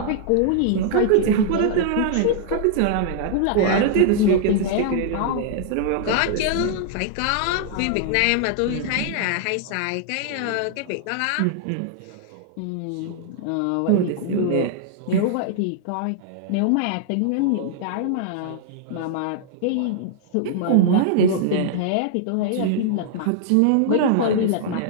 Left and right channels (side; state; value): both; different; correlation -0.01